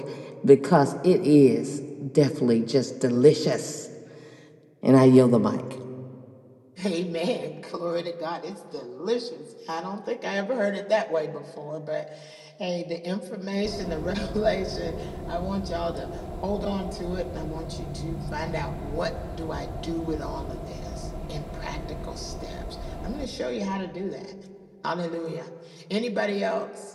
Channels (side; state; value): both; identical; correlation 1.00